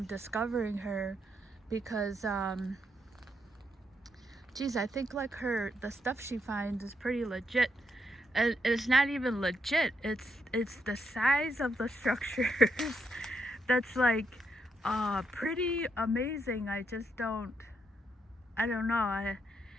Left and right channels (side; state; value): both; normal; correlation 0.79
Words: discovering her because geez, I think like the stuff she finds is pretty legit. And it's not even legit. It's the size of the structures that's like pretty amazing. I don't know.